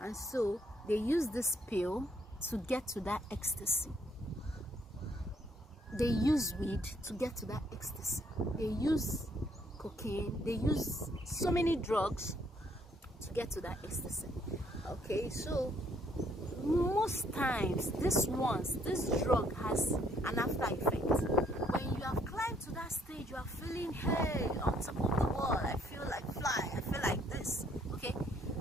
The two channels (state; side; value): normal; both; correlation 0.66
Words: so they use this pill to get to that ecstasy. They use weed to get to that ecstasy. They use cocaine. They use so many drugs to get to that ecstasy. Okay, so most times this drug has an after effect. When you have climbed to that stage, you are feeling, hey, on top of the world, I feel like fly, I feel like this. Okay,